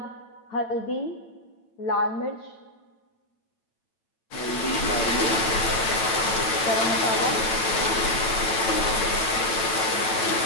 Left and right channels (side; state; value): right; late; 9.1 ms